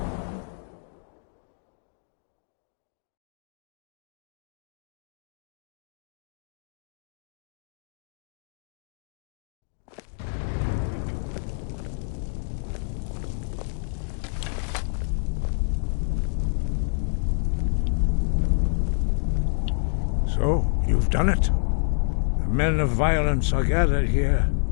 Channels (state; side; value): silent; right; digital silence